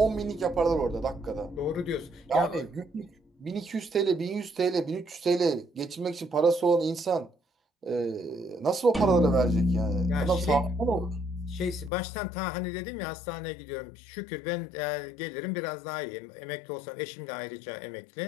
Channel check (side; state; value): right; drops out; at 11.9 s